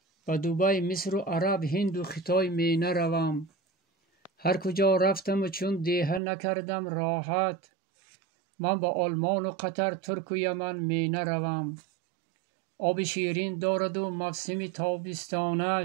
به دبی مصر و عرب هند و خطای می نروم. هر کجا رفتم و چون دیهه نکردم راحت، من به آلمان و قطر ترک و یمن می نروم. آب شیرین دارد و موسم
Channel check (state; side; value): drops out; left; at 6.2 s